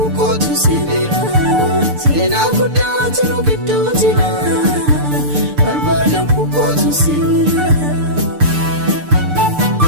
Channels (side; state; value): left; late; 6.8 ms